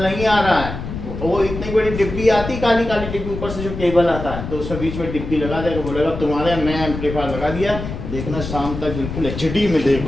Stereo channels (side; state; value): left; noise; rumble, 7 dB below the sound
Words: नहीं आ रहा है। वो इतनी बड़ी डिब्बी आती, काली काली डिब्बी, ऊपर से जो केबल आता है तो उसमें बीच में डिब्बी लगा देगा, बोलेगा तुम्हारे नया एम्पलीफायर लगा दिया, देखना शाम तक बिल्कुल एचडी में